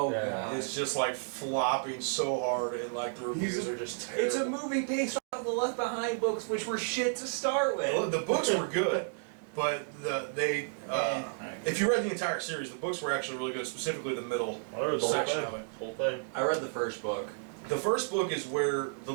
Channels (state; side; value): silent; left; digital silence